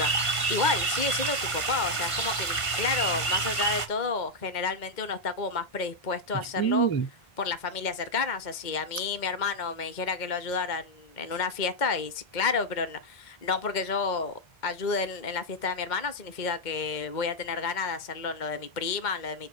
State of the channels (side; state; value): right; late; 1.5 ms